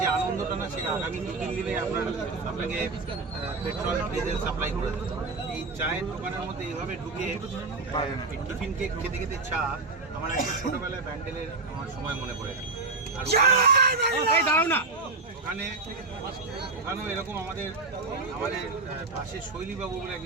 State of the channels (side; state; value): left; quieter; 3.7 dB